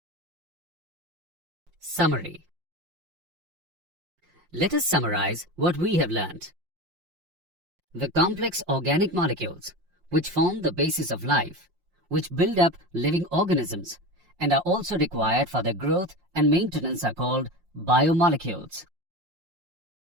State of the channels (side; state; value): left; late; 5.6 ms